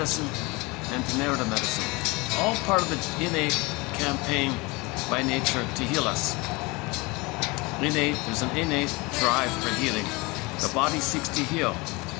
and narrative medicine. All part of the innate campaign by nature to heal us. There's an innate drive for healing. The body seeks to heal,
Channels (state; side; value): quieter; right; 25.2 dB